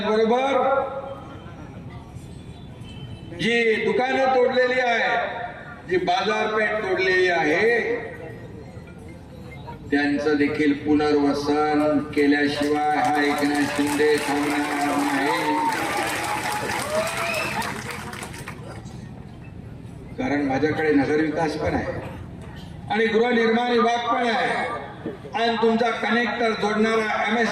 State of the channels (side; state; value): both; identical; correlation 1.00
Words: जी दुकानं तोडलेली आहे, जी बाजारपेठ तोडलेली आहे, त्यांचं देखील पुनर्वसन केल्याशिवाय हा एकनाथ शिंदे थांबणार नाही. कारण माझ्याकडे नगर विकास पण आहे आणि गृहनिर्माण विभाग पण आहे आणि तुमचा कनेक्टर जोडणारा